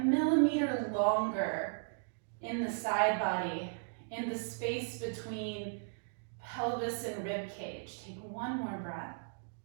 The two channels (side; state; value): left; silent; digital silence